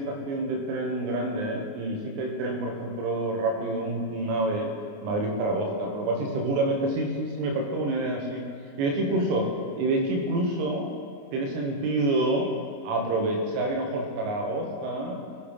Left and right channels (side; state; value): left; late; 29 ms